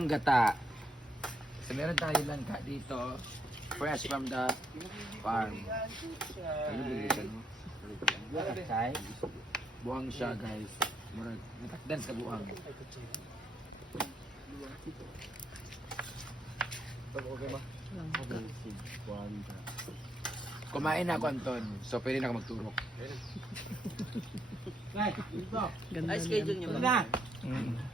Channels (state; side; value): normal; both; correlation 0.74